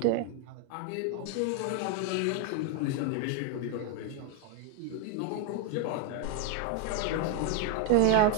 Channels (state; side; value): different; both; correlation 0.01